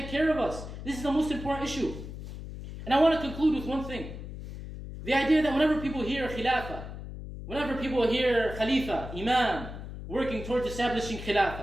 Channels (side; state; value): left; noise; hum, 10 dB below the sound